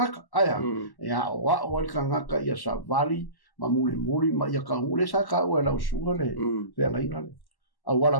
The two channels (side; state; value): right; late; 1.1 ms